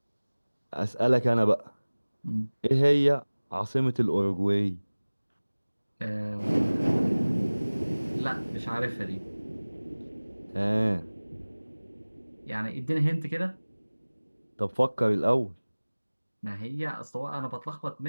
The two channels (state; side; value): inverted; both; correlation -1.00